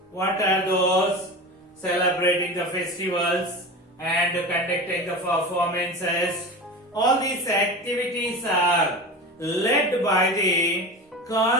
what are those? Celebrating the festivals and conducting the performances. All these activities are led by the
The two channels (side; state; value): both; normal; correlation 0.29